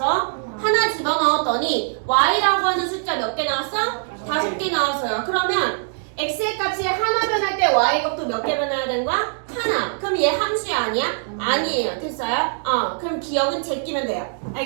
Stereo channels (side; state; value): left; silent; digital silence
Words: 하나 집어넣었더니 y라고 하는 숫자 몇 개 나왔어? 5개 나왔어요. 그러면 x의 값이 하나 변할 때 y 값도 몇 개 변해야 되는 거야? 하나. 그럼 얘 함수야 아니야? 아니에요. 됐어요? 그럼 기억은 제끼면 돼요.